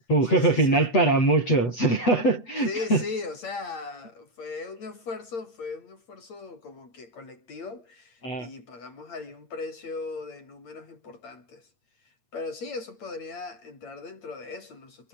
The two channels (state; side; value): late; right; 8.8 ms